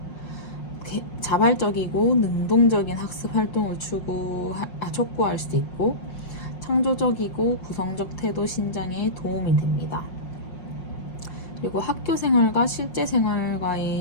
자발적이고 능동적인 학습 활동을 촉구할 수 있고 창조적이고 구성적 태도 신장에 도움이 됩니다. 그리고 학교 생활과 실제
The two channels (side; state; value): right; late; 5.5 ms